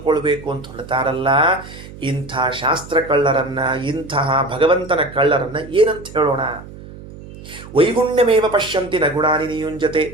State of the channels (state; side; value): noise; right; hum, 16 dB below the sound